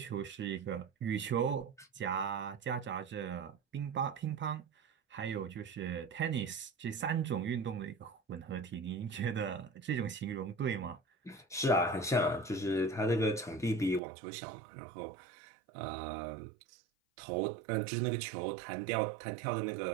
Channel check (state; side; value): drops out; left; at 14.0 s